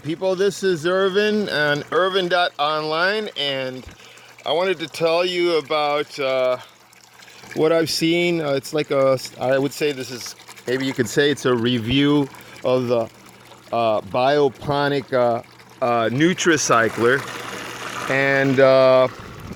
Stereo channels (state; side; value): identical; both; correlation 1.00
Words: this is Irvin on Irvin.online, and I wanted to tell you about what I've seen. I would say this is, maybe you could say it's a review of the bioponic Nutricycler, and